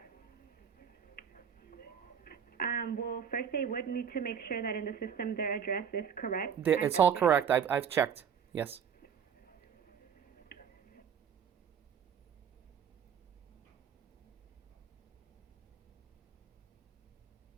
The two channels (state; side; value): quieter; left; 7.8 dB